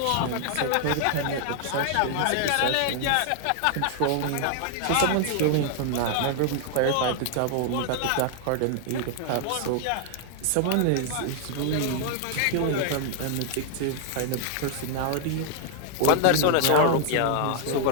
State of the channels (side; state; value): both; different; correlation 0.00